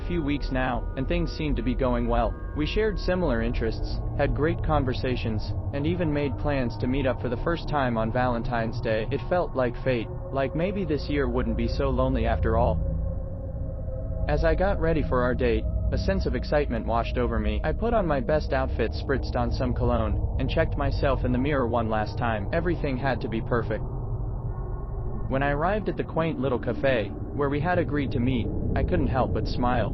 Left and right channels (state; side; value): identical; both; correlation 1.00